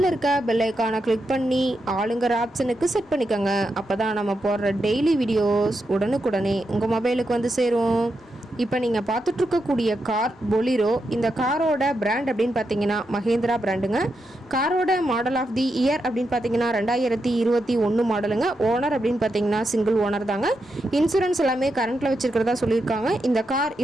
இருக்க பெல் ஐக்கானை கிளிக் பண்ணி ஆளுங்கிற ஆப்ஷனுக்கு செட் பண்ணிக்கோங்க. அப்போ தான் நம்ம போடுற டெய்லி வீடியோஸ் உடனுக்குடனே உங்கள் மொபைலுக்கு வந்து சேரும். இப்போ நீங்கள் பார்த்துட்ருக்கக்கூடிய கார் பொலிரோ. இந்த காரோட பிராண்ட் அப்படின்னு பார்த்தீங்கன்னா மஹேந்திரா பிராண்டுங்க. காரோட மாடல் ஆஃப் தி இயர் அப்படின்னு பார்த்தீங்கன்னா 2021 மாடலுங்க. ஓனர் அப்படின்னு பார்த்தீங்கன்னா சிங்கிள் ஓனர் தாங்க. இன்சூரன்ஸ் எல்லாமே கரண்ட்டில் வச்சுருக்கிறதா சொல்லியிருக்காங்க. இந்த கார்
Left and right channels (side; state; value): both; normal; correlation 0.85